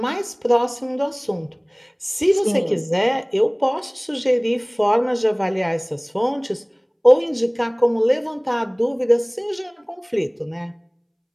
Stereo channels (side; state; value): both; identical; correlation 1.00